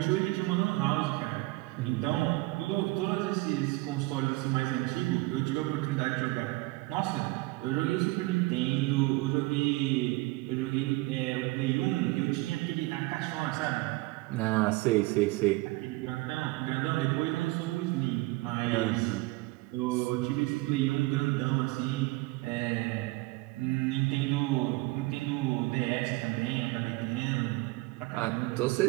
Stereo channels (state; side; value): quieter; left; 21.8 dB